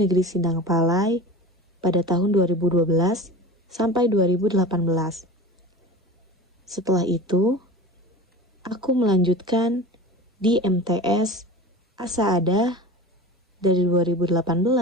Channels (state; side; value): normal; both; correlation 0.32